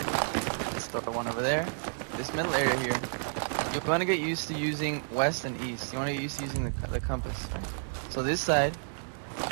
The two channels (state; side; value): silent; left; digital silence